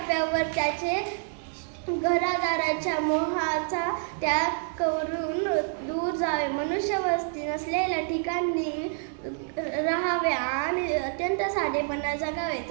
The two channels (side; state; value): left; silent; digital silence